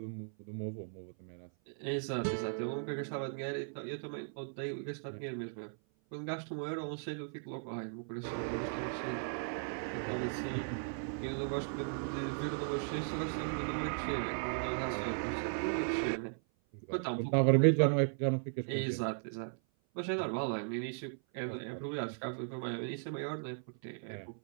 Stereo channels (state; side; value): silent; left; 53 dB below the other